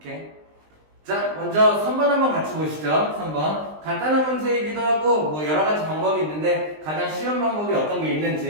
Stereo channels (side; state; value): left; late; 20 ms